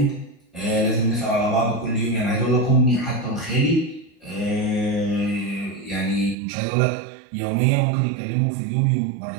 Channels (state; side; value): drops out; left; at 6.4 s